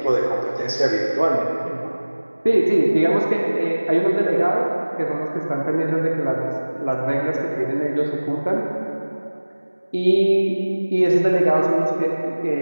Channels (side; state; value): both; inverted; correlation -1.00